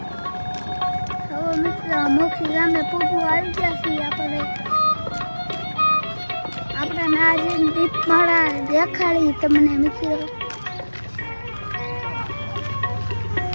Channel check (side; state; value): both; inverted; correlation -1.00